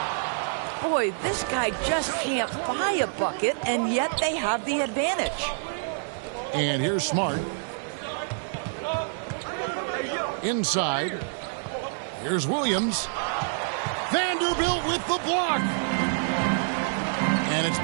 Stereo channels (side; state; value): left; silent; 60 dB below the other